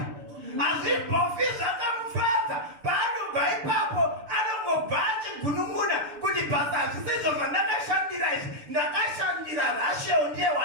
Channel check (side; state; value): left; late; 6.9 ms